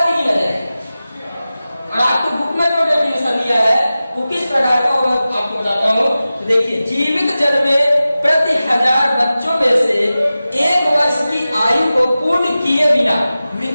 ही गिना जाएगा। और आपको बुक में जो डेफिनेशन दिया है वो किस प्रकार का मैं आपको बताता हूँ। तो देखिए, जीवित जन्मे प्रति 1000 बच्चों में से 1 वर्ष की आयु को पूर्ण किए बिना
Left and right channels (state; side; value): inverted; both; correlation -0.95